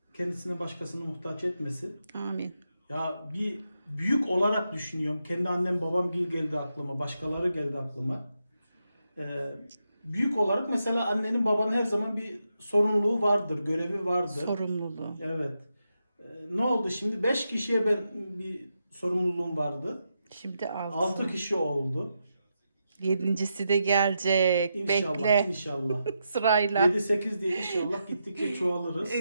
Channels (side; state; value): both; inverted; correlation -0.85